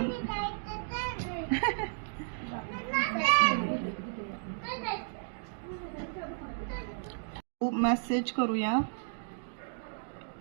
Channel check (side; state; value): left; silent; digital silence